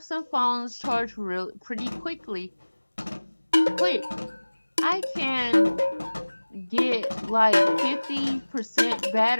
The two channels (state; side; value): inverted; both; correlation -1.00